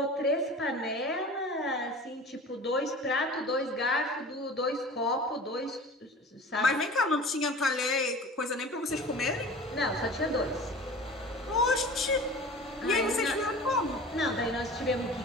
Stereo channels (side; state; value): both; normal; correlation 0.39